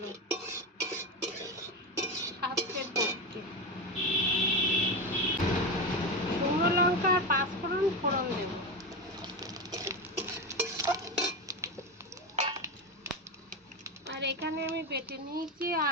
স্বাস্থ্যের পক্ষে। শুকনো লঙ্কা আর পাঁচফোড়ন ফোড়ন দেব। আর এখানে আমি বেটে নিয়েছি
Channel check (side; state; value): both; normal; correlation 0.17